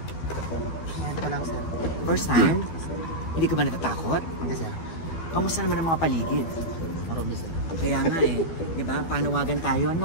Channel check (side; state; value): right; late; 12 ms